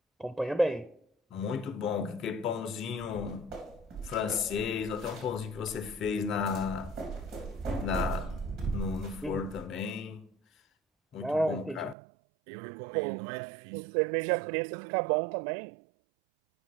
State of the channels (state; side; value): drops out; left; at 12.0 s